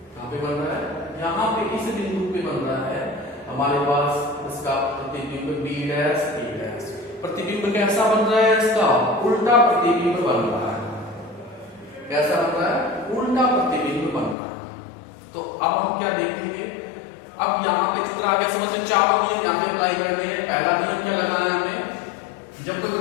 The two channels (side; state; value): right; drops out; at 14.4 s